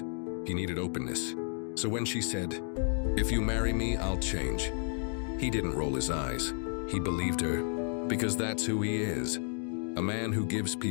He needed openness. So when she said, "If you marry me, I'll change," he didn't roll his eyes. He believed her, because that's who he is. A man who gives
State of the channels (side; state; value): right; silent; 56 dB below the other